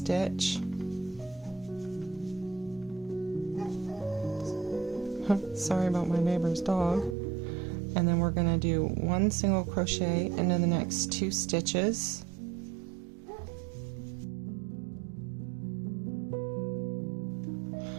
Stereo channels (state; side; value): drops out; left; at 7.2 s